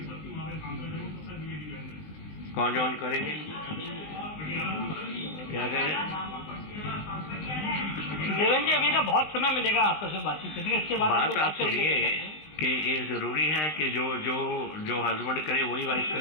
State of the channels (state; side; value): late; right; 19 ms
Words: कौन join करेंगे? क्या कह रहे? देवेंद्र जी, अभी ना बहुत समय मिलेगा आपस में बातचीत करने का। इसके बाद बात आप सुनिए कि ये जरूरी है कि जो हस्बैंड करे वही वाइफ